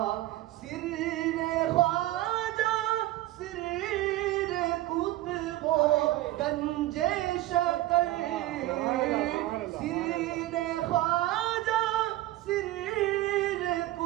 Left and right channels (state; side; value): quieter; left; 16.2 dB